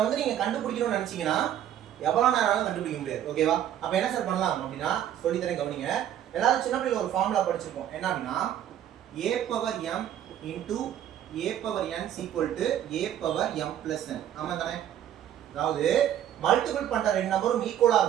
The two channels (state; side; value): quieter; left; 10.8 dB